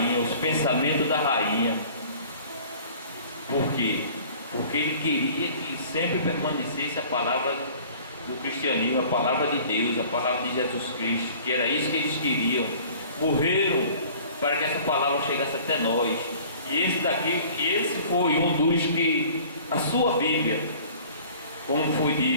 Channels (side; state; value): both; inverted; correlation -0.48